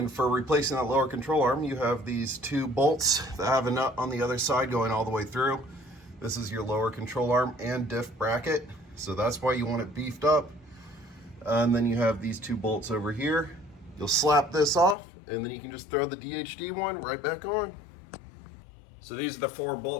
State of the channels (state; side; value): drops out; right; at 15.0 s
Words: for replacing that lower control arm, you have these 2 bolts that have a nut on the other side going all the way through. This is your lower control arm and diff bracket. So that's why you want it beefed up. And then you have these 2 bolts over here. You'll slap this off and then you can just throw the DHD one right back on. So these are the 4